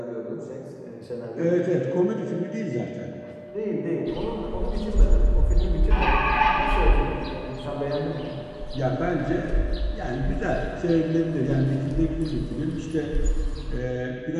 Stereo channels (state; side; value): identical; both; correlation 1.00